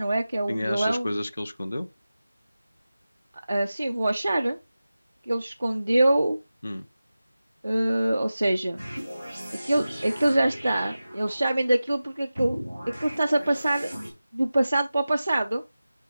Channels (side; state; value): both; inverted; correlation -0.95